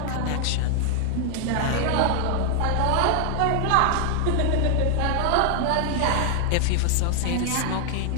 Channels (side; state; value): both; different; correlation 0.00